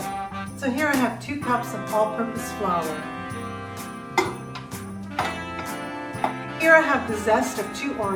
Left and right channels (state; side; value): identical; both; correlation 1.00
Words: So here I have 2 cups of all-purpose flour. Here I have the zest of 2